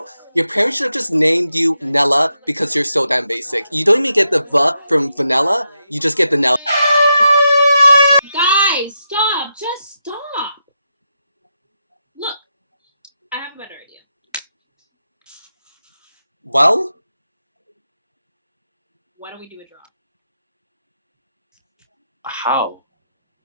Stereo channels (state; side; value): inverted; both; correlation -0.84